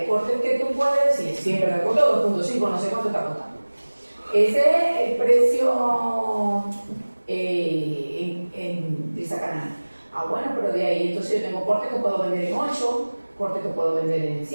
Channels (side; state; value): both; inverted; correlation -1.00